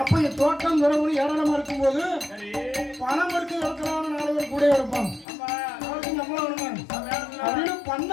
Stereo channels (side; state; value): right; drops out; at 5.2 s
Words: அப்ப இந்த தோட்டம் துறவு ஏராளமா இருக்கும்போது பணம் எடுத்து இருக்கிறான்னு 4 பேர் கூட இருப்பாங்க. அப்படின்னு